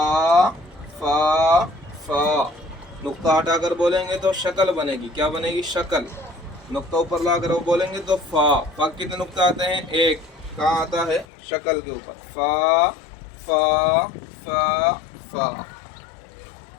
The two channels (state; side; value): drops out; right; at 11.2 s